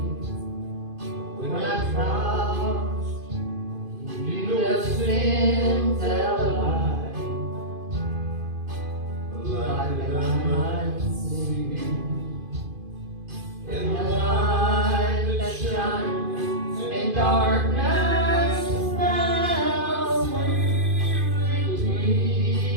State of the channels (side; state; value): left; late; 2.5 ms